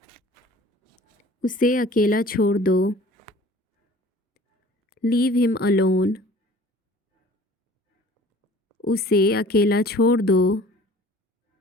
उसे अकेला छोड़ दो। Leave him alone. उसे अकेला छोड़ दो।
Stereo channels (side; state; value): both; normal; correlation 0.48